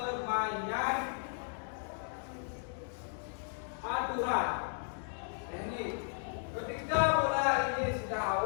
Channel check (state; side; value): silent; right; 54 dB below the other